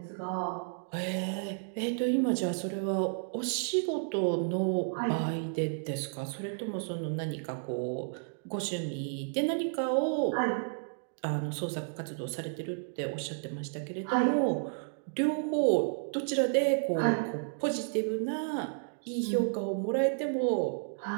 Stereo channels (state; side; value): silent; left; digital silence